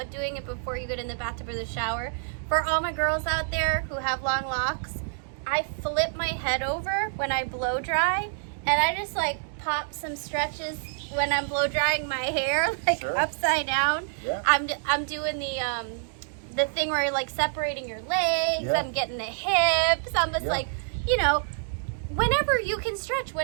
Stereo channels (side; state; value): left; silent; digital silence